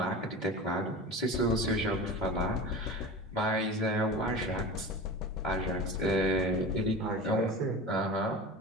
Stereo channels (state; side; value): normal; both; correlation 0.31